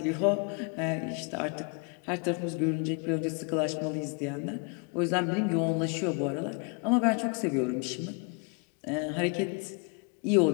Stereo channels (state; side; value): quieter; right; 35.2 dB